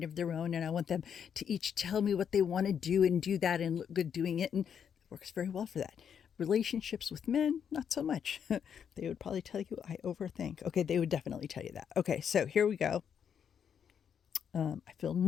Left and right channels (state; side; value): quieter; right; 7.9 dB